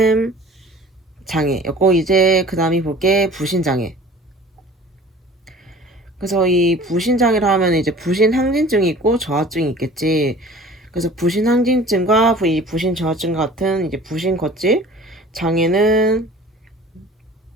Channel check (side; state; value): both; normal; correlation 0.45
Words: 장애였고 이제 그 다음이 볼게 부신장애. 그래서 이 부신장애라 하면 이제 부신항진증이 있고 저하증이 있겠지. 그래서 부신항진증과 이 부신저하증 같은 이제 부신거질 장애는